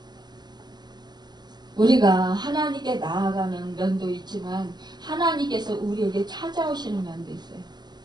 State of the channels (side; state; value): left; late; 0.21 ms